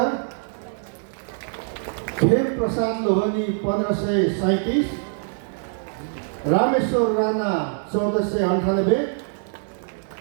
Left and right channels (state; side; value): silent; left; 63 dB below the other